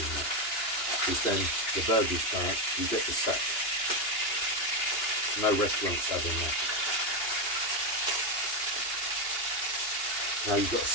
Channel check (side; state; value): right; late; 2.8 ms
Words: much, because then the burger's burnt, you get the sack. No restaurant's having that. Now you've got to